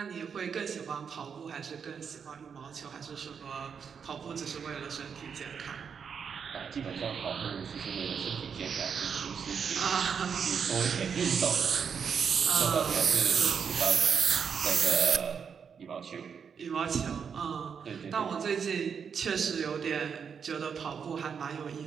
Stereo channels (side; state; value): left; quieter; 6.7 dB